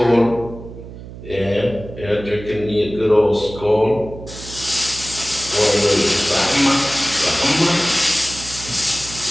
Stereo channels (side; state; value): right; noise; hum, 14 dB below the sound